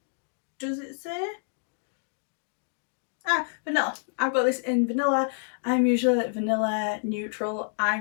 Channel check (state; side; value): silent; right; digital silence